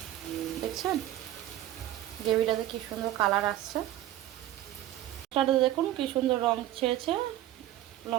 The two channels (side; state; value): left; quieter; 13.6 dB